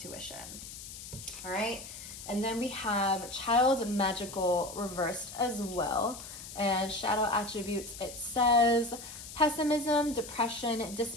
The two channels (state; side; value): noise; left; hiss, 12 dB below the sound